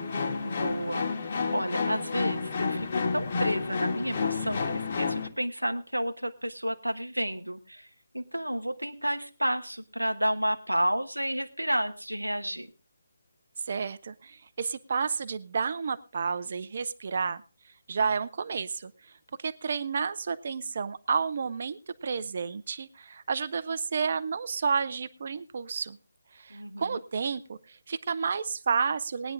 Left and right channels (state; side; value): inverted; both; correlation -0.89